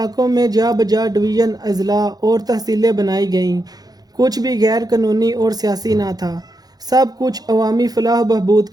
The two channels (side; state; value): left; late; 0.19 ms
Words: میں جا بجا ڈویژن، اضلاع اور تحصیلیں بنائی گئیں۔ کچھ بھی غیر قانونی اور سیاسی نہ تھا، سب کچھ عوامی فلاح و بہبود